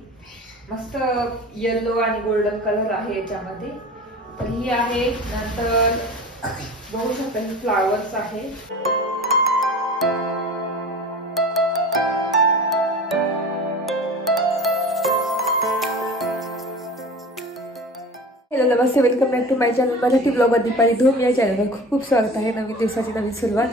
मस्त येलो आणि गोल्डन कलर आहे याच्यामध्ये. तर ही आहे. नंतर बघू शकता ही फ्लावर्स आहे. हॅलो नमस्ते, welcome back to my channel Marathi blog Deepali Dhoom. या चॅनलवर खूप खूप स्वागत आहे. नवीन दिवसाची नवीन सुरुवात.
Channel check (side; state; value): both; normal; correlation 0.37